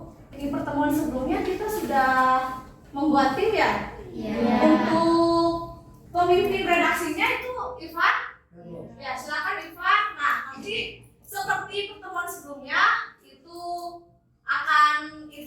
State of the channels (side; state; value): both; identical; correlation 1.00